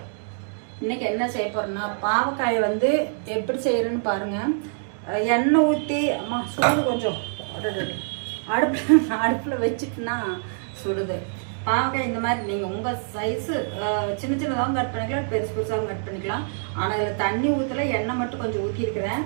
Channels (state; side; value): silent; left; digital silence